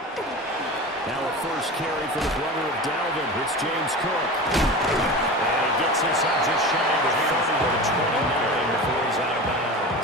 Now a first carry for the brother of Dalvin. It's James Cook. And he gets this up just shy of the 30 to the 29 before he's out of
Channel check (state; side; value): normal; both; correlation 0.30